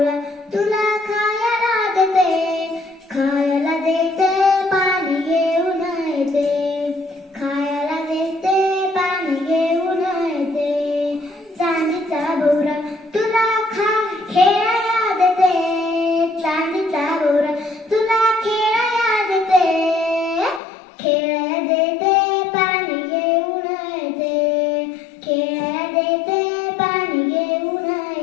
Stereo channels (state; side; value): drops out; right; at 20.6 s